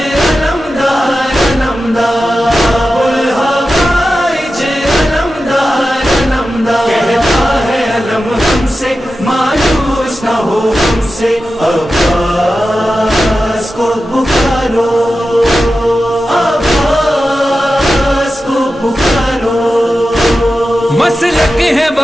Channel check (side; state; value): both; normal; correlation 0.92